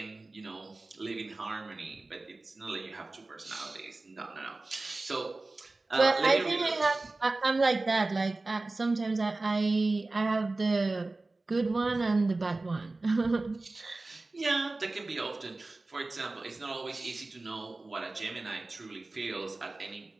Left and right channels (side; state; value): left; quieter; 3.2 dB